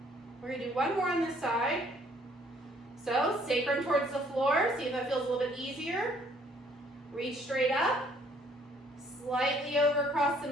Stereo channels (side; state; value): both; normal; correlation 0.62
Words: We're going to do 1 more on this side. So, sacrum towards the floor. See if that feels a little bit easier. Reach straight up. Slightly over across the